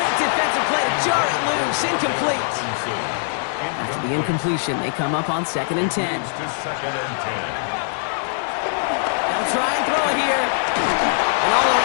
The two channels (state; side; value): silent; right; digital silence